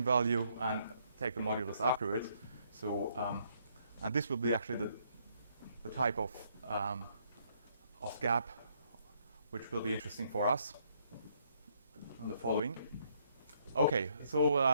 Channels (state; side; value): inverted; both; correlation -0.70